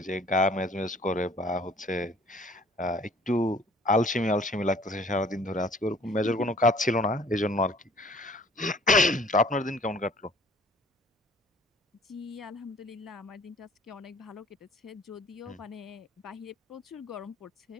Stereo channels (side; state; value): both; normal; correlation 0.54